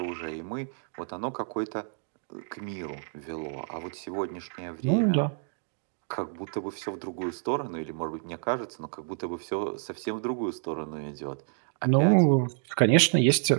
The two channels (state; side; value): silent; left; digital silence